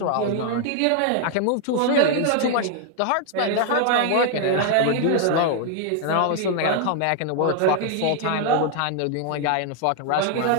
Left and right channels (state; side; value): different; both; correlation 0.00